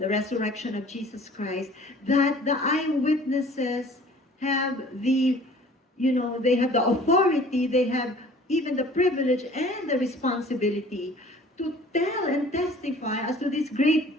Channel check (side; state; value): both; normal; correlation 0.50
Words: resurrection of Jesus Christ, that the eyewitnesses have the, they have the authority, they have even the privilege and the responsibility to tell and testify as to this